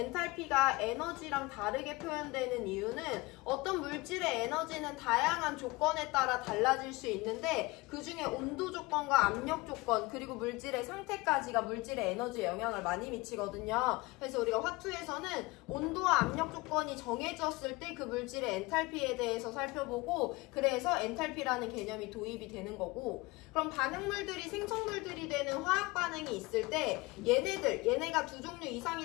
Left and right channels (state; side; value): quieter; right; 22.9 dB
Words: 에너지랑 다르게 표현되는 이유는 어떤 물질의 에너지는 다양한 조건에 따라 달라질 수 있는데 그 중에 온도 조건과 압력 조건 그리고 물질의 상태까지가 물질의 에너지에 영향을 많이 미치거든요. 그래서 우리가 화투에서는 온도와 압력 조건이 정해졌을 때 그 물질의 엔탈피에 대해서 살펴보고 그래서 엔탈피라는 개념이 도입이 되는 거고 그럼 반응물들이 생성물들이 되는 화학 반응이 있을 때 얘네가 두 종류